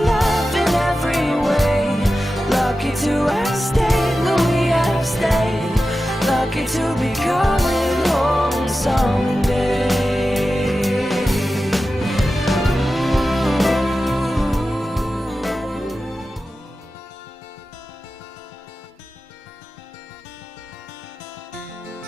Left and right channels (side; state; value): both; normal; correlation 0.93